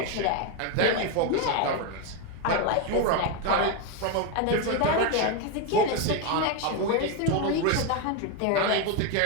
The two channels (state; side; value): different; both; correlation 0.02